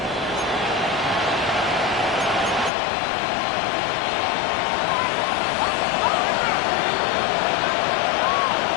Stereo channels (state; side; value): drops out; right; at 2.7 s